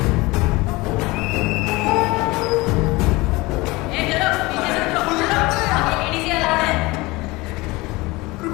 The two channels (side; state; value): right; quieter; 22.3 dB